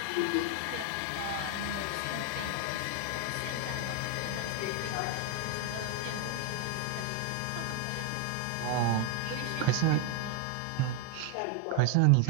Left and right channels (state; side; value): different; both; correlation 0.01